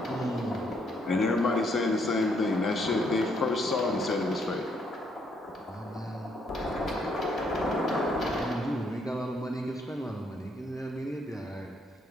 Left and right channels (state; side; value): normal; both; correlation 0.71